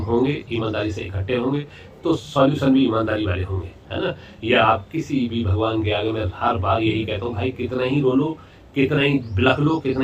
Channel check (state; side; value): identical; both; correlation 1.00